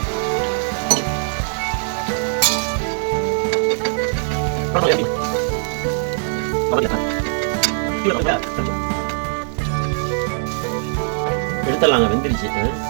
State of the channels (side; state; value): left; silent; 65 dB below the other